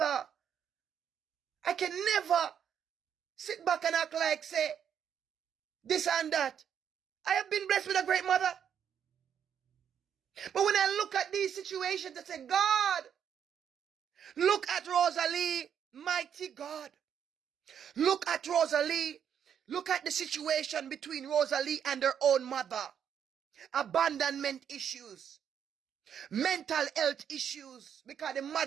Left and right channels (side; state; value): left; quieter; 8.5 dB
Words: I can never sit back and act like, say, this and that. I have been blessed with a great mother. But when I look at these situations, I say, God, look at Rosalie, mighty God. Look at Rosalie. Look at the situation between Rosalie and her own mother. Abandonment issues. Mental health issues. Because the